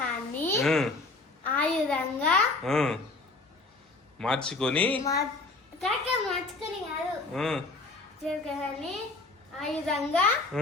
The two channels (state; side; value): quieter; right; 3.5 dB